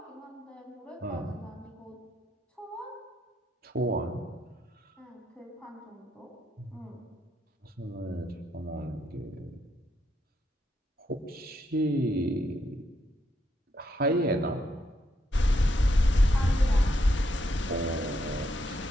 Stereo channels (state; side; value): normal; both; correlation 0.78